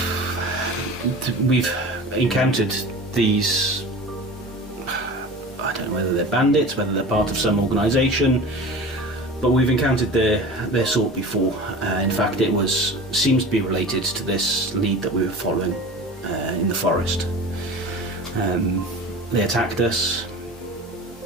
We've encountered these, I don't know whether they're bandits, whether they're part of some organisation, but we've encountered their sort before. In fact, it seems to be related to this lead that we were following in the forest. They attacked us.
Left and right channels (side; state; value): both; normal; correlation 0.35